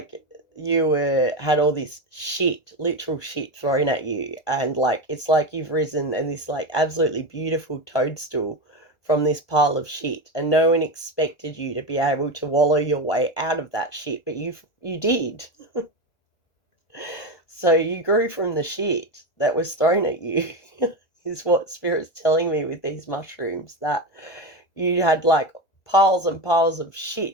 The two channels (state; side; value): late; right; 1.8 ms